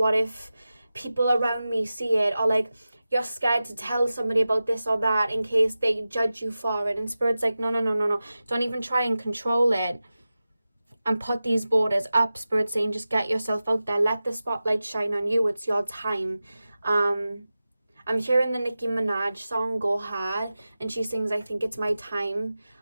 if people around me see it? Or like, you're scared to tell somebody about this or that in case they judge you for it. And Spirit's like, no. Don't even try and control it. And put these borders up. Spirit's saying, just get yourself out there. Let the spotlight shine on you. It's your time. I'm hearing the Nicki Minaj song, Go Hard. And she sings, I think it's my time.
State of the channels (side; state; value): both; inverted; correlation -0.95